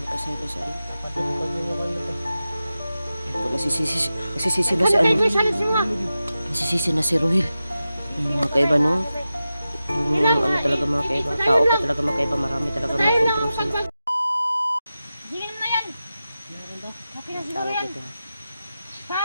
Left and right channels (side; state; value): both; inverted; correlation -0.93